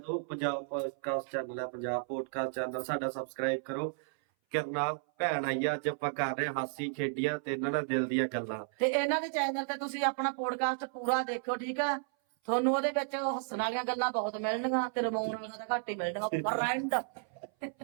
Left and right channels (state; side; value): silent; left; 56 dB below the other